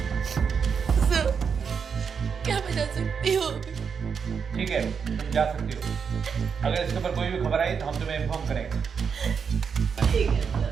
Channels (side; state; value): left; quieter; 6.4 dB